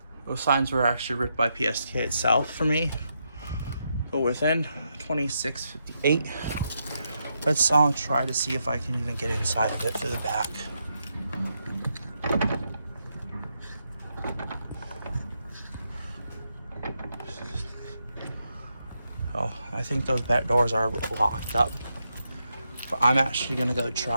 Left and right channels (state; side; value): inverted; both; correlation -0.82